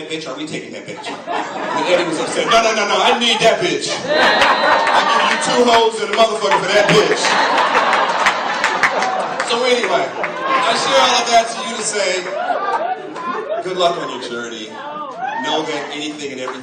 bitch? Are we taking that bitch? And Eddie was upset. No, I need that bitch. I give you 2 hoes and a motherfucker for that bitch. So anyway, I share all of that to you to say, good luck on your journey. Know that anything and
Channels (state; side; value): identical; both; correlation 1.00